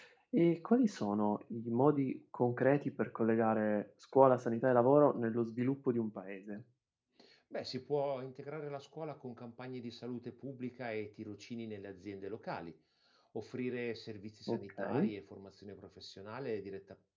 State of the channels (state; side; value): identical; both; correlation 1.00